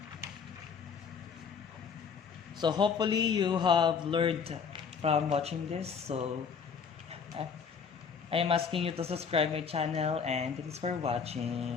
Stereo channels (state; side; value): quieter; right; 6.2 dB